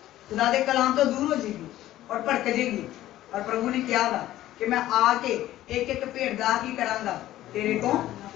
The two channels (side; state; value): right; quieter; 14.3 dB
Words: खुदा के कलाम तो दूर हो जाएगी और भड़क जाएगी। और प्रभु ने क्या कहा कि मैं आके एक एक भेड़ दा की करांगा तेरे को